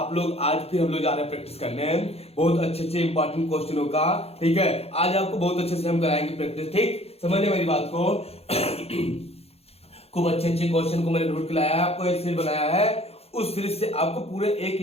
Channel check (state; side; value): late; right; 0.29 ms